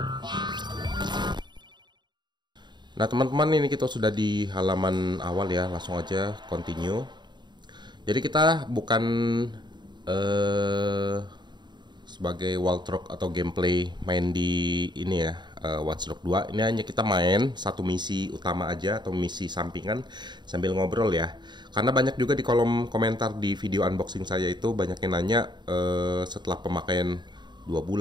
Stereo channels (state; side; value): late; left; 0.21 ms